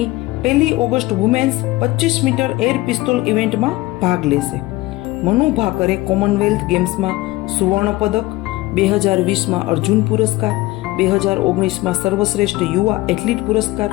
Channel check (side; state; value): right; quieter; 19.3 dB